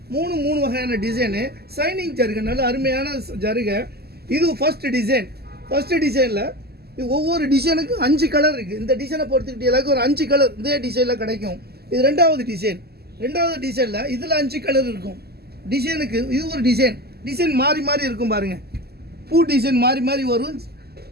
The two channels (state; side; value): late; left; 0.46 ms